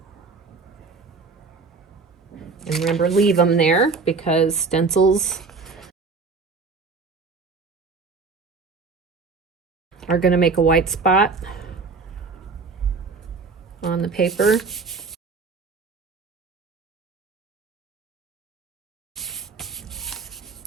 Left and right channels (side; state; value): left; quieter; 4.5 dB